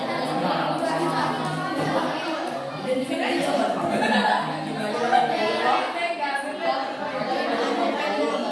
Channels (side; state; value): both; identical; correlation 1.00